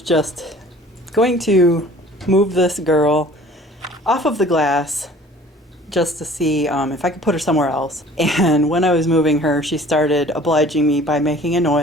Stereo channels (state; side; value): normal; both; correlation 0.49